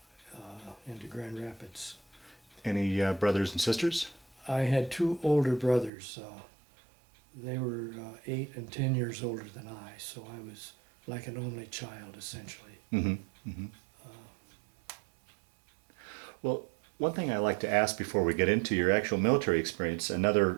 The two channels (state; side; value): drops out; left; at 5.9 s